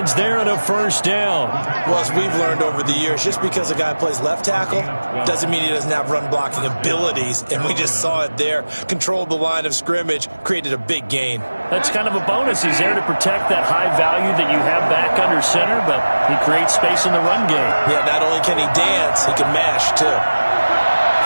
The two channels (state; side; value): inverted; both; correlation -1.00